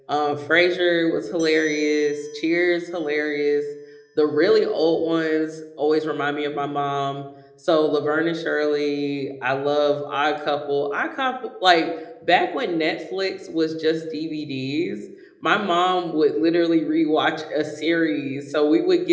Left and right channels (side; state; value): both; identical; correlation 1.00